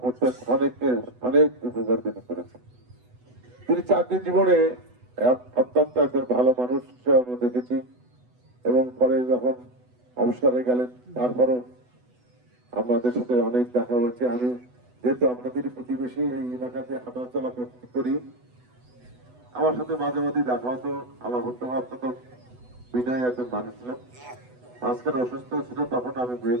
পড়তেন অনেক উপকার তিনি করেছেন। তিনি চাকরি জীবনে অত্যন্ত একজন ভালো মানুষ হিসেবে দেখেছি এবং পরে যখন অবসরে গেলেন তারপরও আমাদের সাথে অনেক দেখা হয়েছে। আমি যেহেতু আপনাদের প্রতিবেশী এই এলাকাতে হাঁটাচলা করি, আমার সাথে মাঝে মাঝে দেখা হতো। আমার অত্যন্ত বিনয় একজন মানুষ ছিলেন। আজকাল অসুস্থ ছিল, তখন আমি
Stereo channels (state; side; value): late; left; 8.1 ms